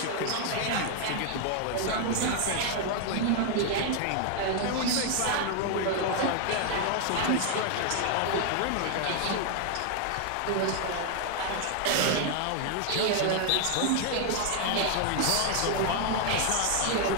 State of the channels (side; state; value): both; different; correlation 0.00